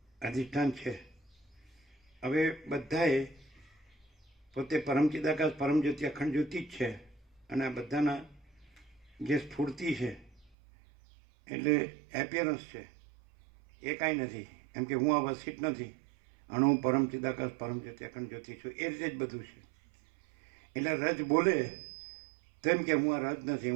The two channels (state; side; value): drops out; left; at 10.5 s